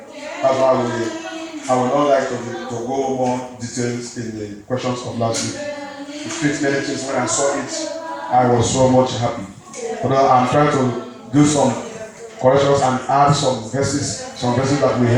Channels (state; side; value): identical; both; correlation 1.00